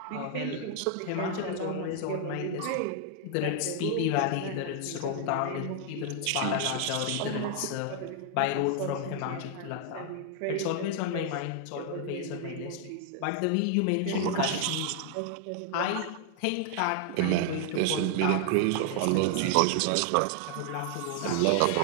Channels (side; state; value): both; different; correlation 0.00